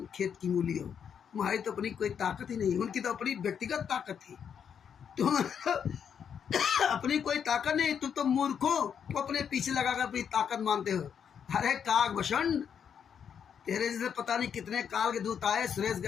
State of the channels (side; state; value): right; quieter; 7.7 dB